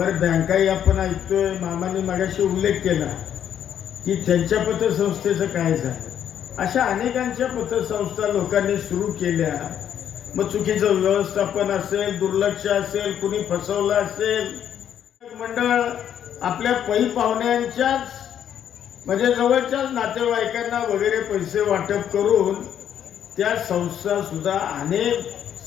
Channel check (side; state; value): right; quieter; 9.5 dB